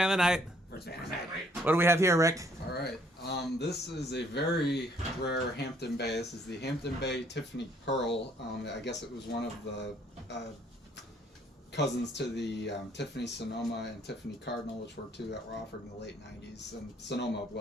of the night. First fan of the night. What do we have here, Rick? All right. This is a very rare Hampton Bay. This is the Hampton Bay Tiffany Pearl. I guess it was one of the cousins to the Tiffany Sonoma and Tiffany Cardinal, which were two that were offered in the late 90s, and Sonoma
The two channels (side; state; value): both; normal; correlation 0.64